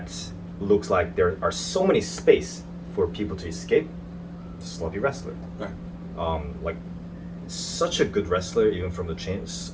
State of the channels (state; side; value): identical; both; correlation 1.00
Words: looks like there are so many space for people to escape, sloppy wrestler. Right. Like such a good wrestler, even from